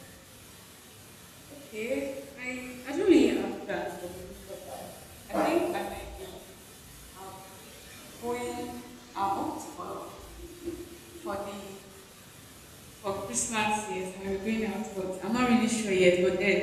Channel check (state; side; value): identical; both; correlation 1.00